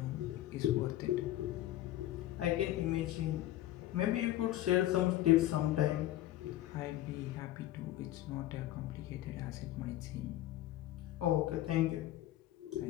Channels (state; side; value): quieter; right; 14.5 dB